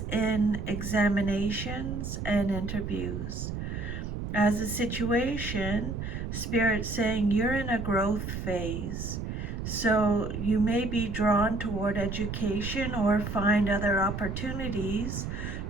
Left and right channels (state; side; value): noise; right; rumble, 5 dB below the sound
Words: in examinations and interviews. As a situation, Spirit saying you're in a growth phase. So you may be drawn toward education or find other opportunities